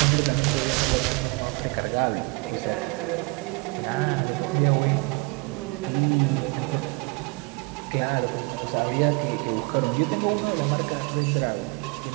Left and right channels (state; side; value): quieter; left; 29.5 dB